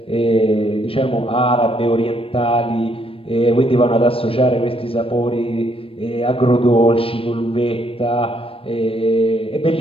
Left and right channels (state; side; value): late; right; 0.27 ms